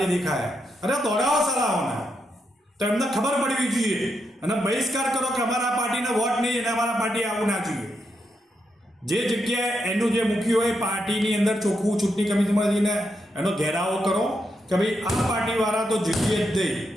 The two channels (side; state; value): both; normal; correlation 0.82